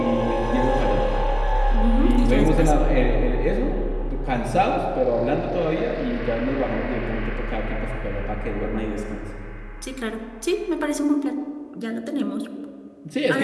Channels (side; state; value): both; identical; correlation 1.00